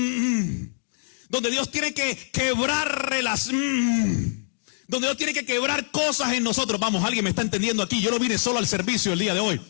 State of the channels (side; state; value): right; silent; digital silence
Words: Dios tiene que quebrar relaciones. Donde Dios tiene que quebrar cosas en nosotros. Vamos, alguien me está entendiendo aquí. Yo no vine solo al servicio el día de hoy.